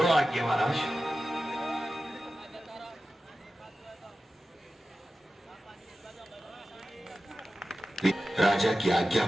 आज्ञा महाराज। राजा की आज्ञा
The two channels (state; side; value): normal; both; correlation 0.94